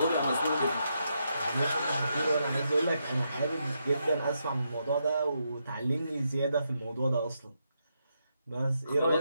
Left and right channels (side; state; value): both; inverted; correlation -0.81